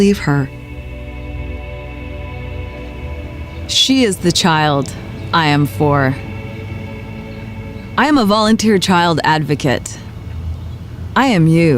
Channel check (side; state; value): both; identical; correlation 1.00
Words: her. She is the child I am for. I am a volunteer child advocate. I am